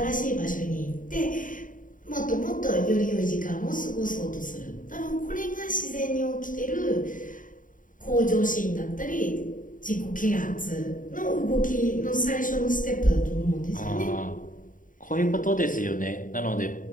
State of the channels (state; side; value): late; right; 0.39 ms